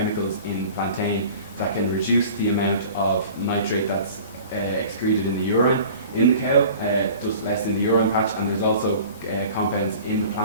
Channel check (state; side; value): inverted; both; correlation -0.43